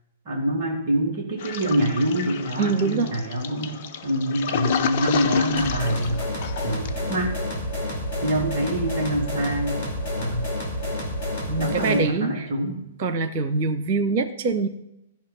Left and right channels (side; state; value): both; inverted; correlation -0.52